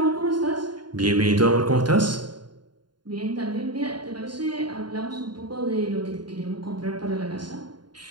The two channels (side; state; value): left; late; 0.71 ms